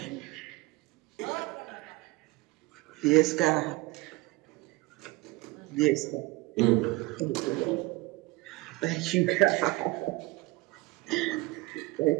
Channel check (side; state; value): left; quieter; 21.0 dB